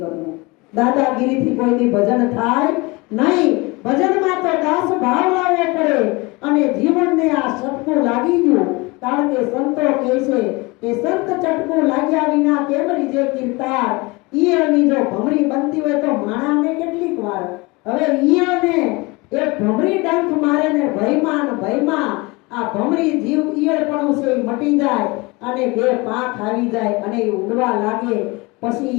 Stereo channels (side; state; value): right; quieter; 25.0 dB